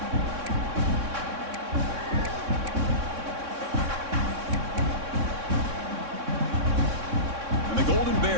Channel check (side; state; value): left; late; 3.6 ms